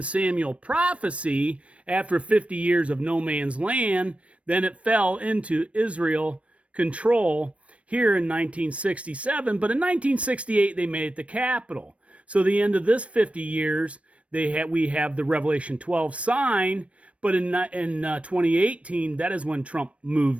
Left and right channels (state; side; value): late; left; 0.063 ms